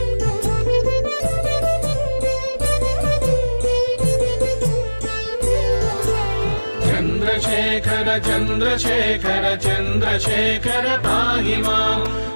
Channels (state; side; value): inverted; both; correlation -1.00